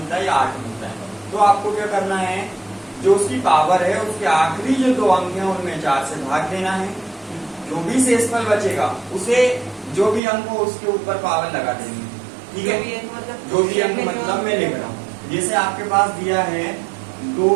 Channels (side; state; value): left; drops out; at 10.2 s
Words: है या 8 मिलता है, तो आपको क्या करना है, जो उसकी पावर है उसके आखिरी जो 2 अंक हैं उनमें 4 से भाग देना है। जो भी शेषफल बचेगा उसे जो भी अंक हो उसके ऊपर पावर लगा देनी है। ठीक है, जो भी अंक मतलब मैं लिख रहा हूँ, जैसे आपके पास दिया है 2